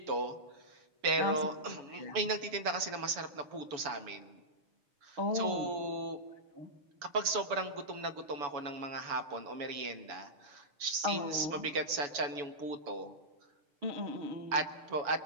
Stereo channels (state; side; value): late; left; 7.0 ms